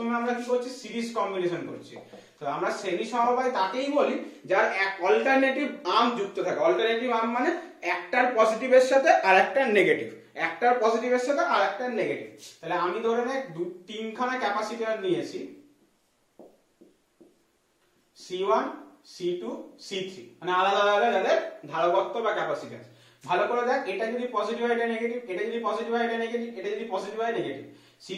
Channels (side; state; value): both; identical; correlation 1.00